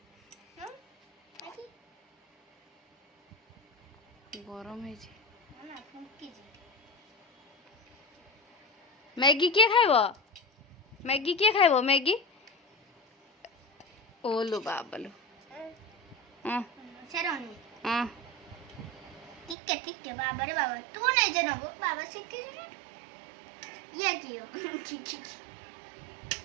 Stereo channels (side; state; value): left; drops out; at 19.6 s